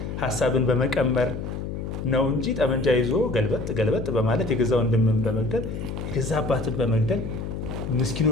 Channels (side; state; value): left; noise; hum, 6 dB below the sound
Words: ሀሳብን በመቀመር ነው እንጂ ጠመንጃ ይዞ ገልበጥ በማለት የገዛ ወንድምን በመግደል የገዛ አባትን በመግደል